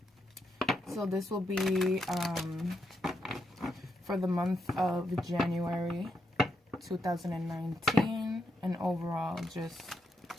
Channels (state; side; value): normal; both; correlation 0.81